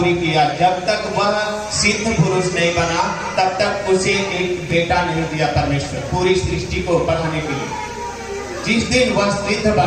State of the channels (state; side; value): identical; both; correlation 1.00